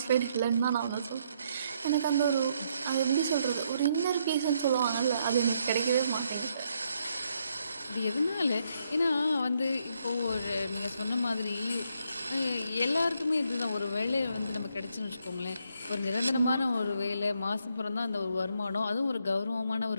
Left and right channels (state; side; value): inverted; both; correlation -0.75